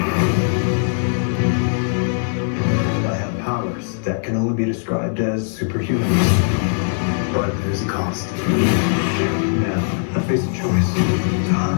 I have powers that can only be described as superhuman. But there's a cost. Now, I face a choice. To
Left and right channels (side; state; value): right; silent; digital silence